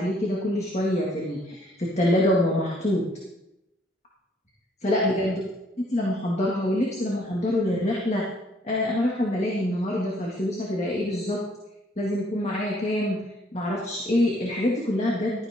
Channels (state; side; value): normal; both; correlation 0.64